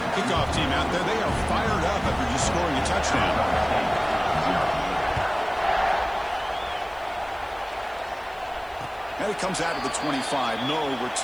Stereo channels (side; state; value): right; noise; hiss, 28 dB below the sound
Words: Kickoff team out there. They are fired up after just scoring a touchdown. And it comes out of the 25. No